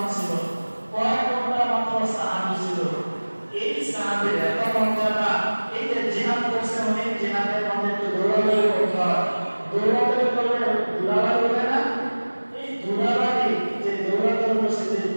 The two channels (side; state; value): both; inverted; correlation -1.00